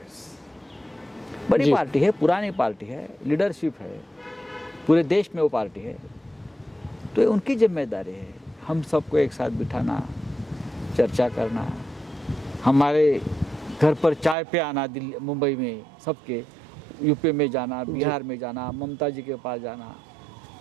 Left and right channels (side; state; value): left; drops out; at 14.4 s